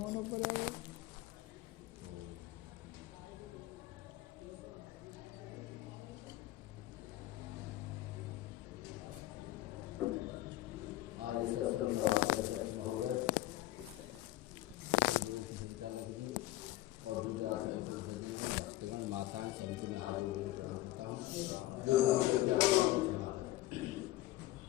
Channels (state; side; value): quieter; right; 16.4 dB